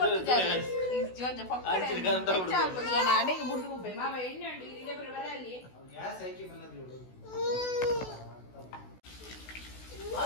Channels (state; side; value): late; right; 16 ms